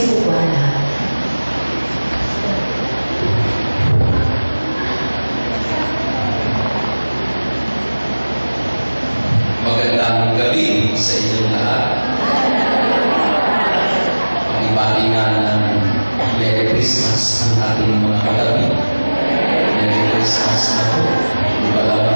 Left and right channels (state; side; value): inverted; both; correlation -1.00